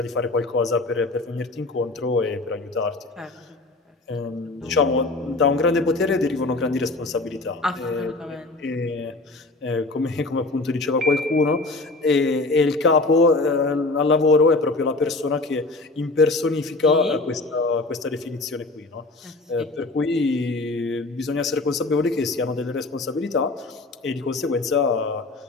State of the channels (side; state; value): right; quieter; 3.2 dB